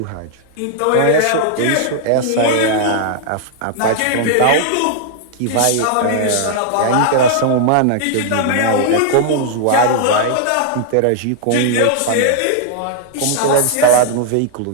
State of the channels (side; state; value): both; different; correlation -0.01